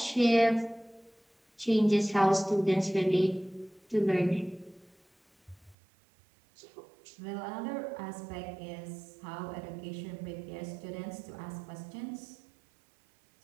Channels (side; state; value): left; drops out; at 5.8 s